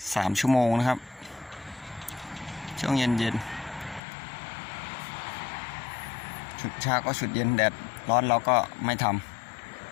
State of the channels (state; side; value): drops out; right; at 4.0 s